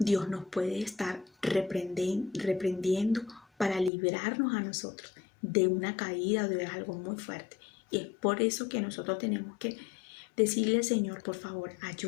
nos puede estar reprendiendo para librarnos a nosotros de una caída o de algo muy fuerte. Y es por eso que nosotros tenemos que decirle al Señor, por favor,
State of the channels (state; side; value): drops out; right; at 3.9 s